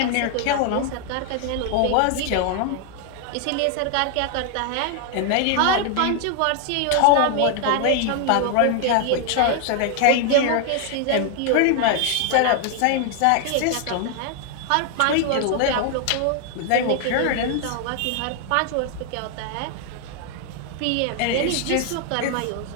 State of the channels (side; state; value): both; different; correlation 0.00